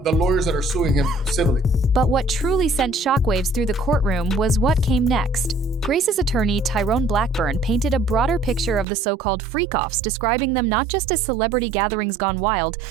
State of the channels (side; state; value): left; drops out; at 8.8 s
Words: lawyers that are suing him civilly. But what truly sent shockwaves through the courtroom was what came next. Grace's attorney, Tyrone Blackburn, painted a broader picture of the so-called FreakOFFS, describing them not just as celebrity gatherings gone wild,